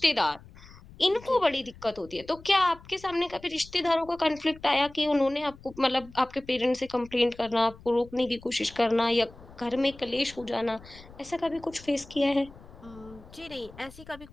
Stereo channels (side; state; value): left; noise; rumble, 21 dB below the sound